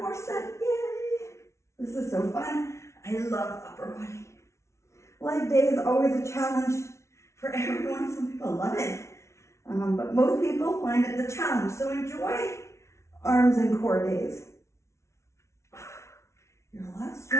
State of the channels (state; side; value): late; right; 0.13 ms